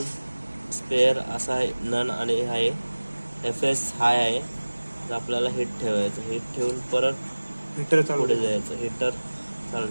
स्पेअर असा आहे, नन आणि आहे FS हाय आहे, तर आपल्याला हिट ठेवायचं. हिट ठेवून परत हिटर पुढे जायचं, हिटर चालू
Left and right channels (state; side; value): inverted; both; correlation -1.00